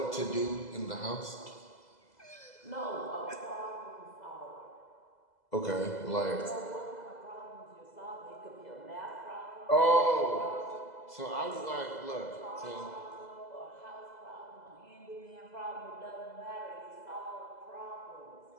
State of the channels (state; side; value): late; right; 2.0 ms